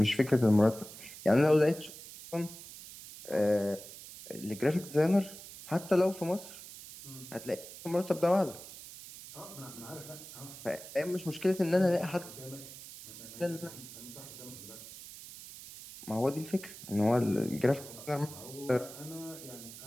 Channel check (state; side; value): noise; right; hiss, 14 dB below the sound